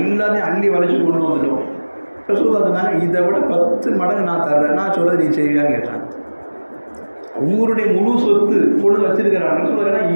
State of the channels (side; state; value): both; inverted; correlation -1.00